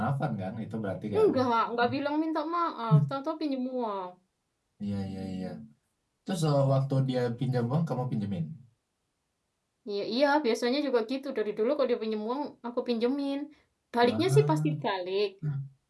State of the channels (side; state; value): both; identical; correlation 1.00